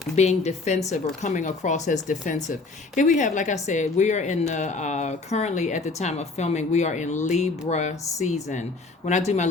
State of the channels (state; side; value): quieter; right; 3.8 dB